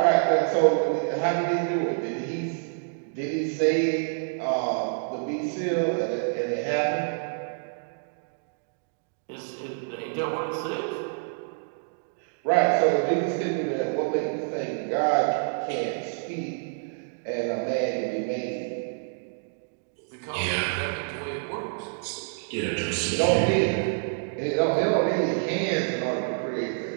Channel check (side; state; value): left; silent; digital silence